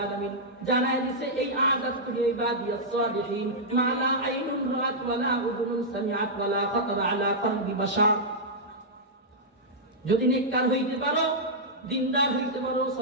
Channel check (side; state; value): both; normal; correlation -0.09